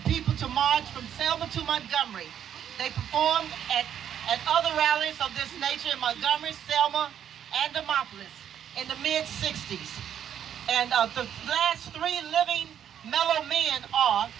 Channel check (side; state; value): left; quieter; 9.5 dB